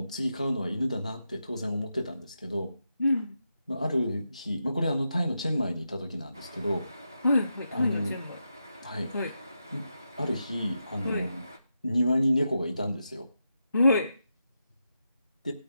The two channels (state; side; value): inverted; both; correlation -0.87